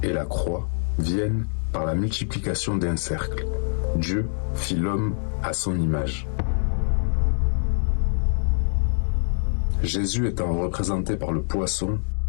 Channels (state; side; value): silent; right; digital silence